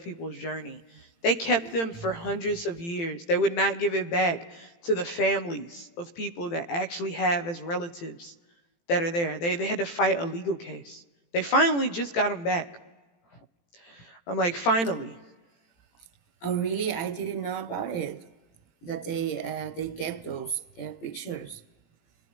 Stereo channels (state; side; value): late; right; 18 ms